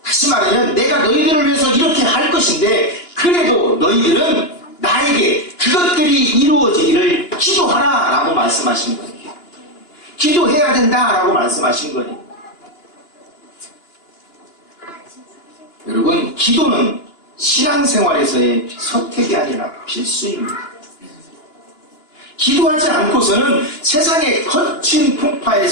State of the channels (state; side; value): late; right; 2.9 ms